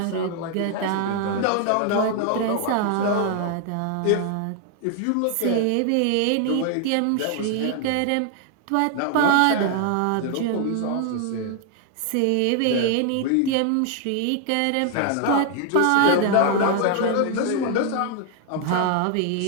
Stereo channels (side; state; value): both; different; correlation 0.00